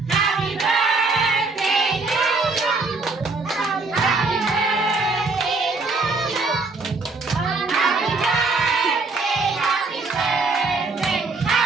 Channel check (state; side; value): quieter; left; 3.8 dB